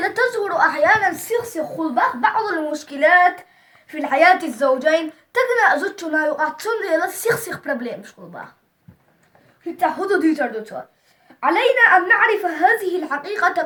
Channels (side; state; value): both; identical; correlation 1.00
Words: تظهر أحيانا سيخسخ الباغ بعض المشكلات في الحياة الزوجين تجنى زوجنا يقع تندل سيخسخ بروبليم مش الباغ في تحدد يتردد. علينا أن نعرف هذه الحقيقة